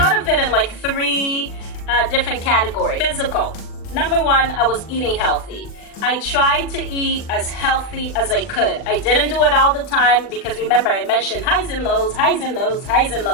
of it in like three different categories. Physical. Number one, I was eating healthy. I tried to eat as healthy as I could. I didn't do it all the time because remember I mentioned highs and lows, highs and lows, highs and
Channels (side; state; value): right; late; 40 ms